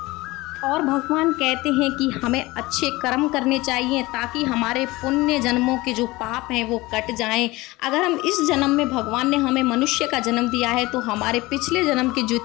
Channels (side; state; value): right; quieter; 20.7 dB